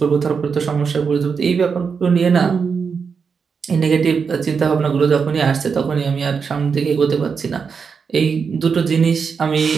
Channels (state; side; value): quieter; left; 5.8 dB